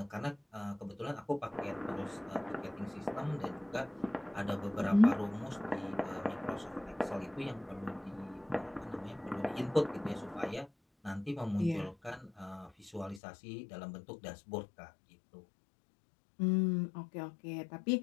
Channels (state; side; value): drops out; right; at 13.2 s